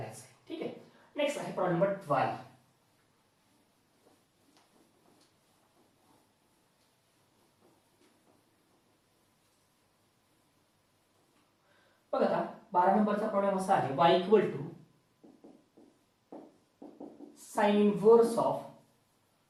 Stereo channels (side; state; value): both; identical; correlation 1.00